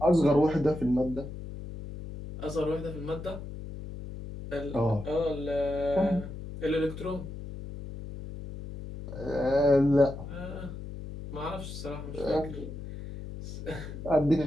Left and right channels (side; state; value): left; noise; hum, 10 dB below the sound